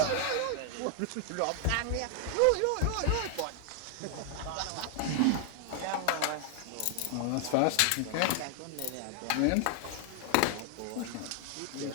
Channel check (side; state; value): both; different; correlation 0.00